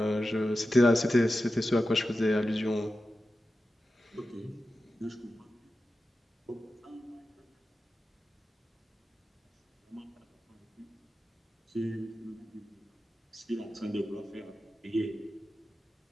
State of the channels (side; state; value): both; normal; correlation 0.93